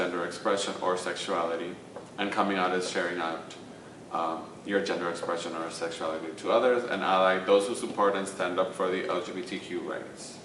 expression or sexuality. And coming out is sharing out your gender expression or sexuality to others. And ally, those who support and stand up for the LGBTQ rights.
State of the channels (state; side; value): identical; both; correlation 1.00